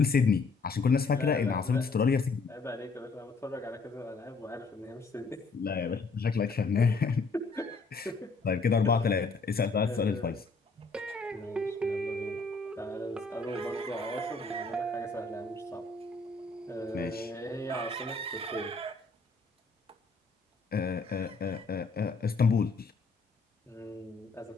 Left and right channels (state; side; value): quieter; right; 4.0 dB